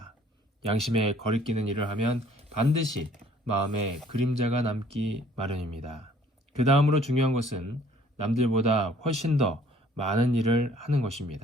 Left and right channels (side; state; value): both; normal; correlation 0.58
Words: 양심에 거리끼는 일을 하면 반드시 마음에 그림자가 남기 마련입니다. 그 다음으로 중요한 것은 남들보다 훨씬 더 많은 일을 하는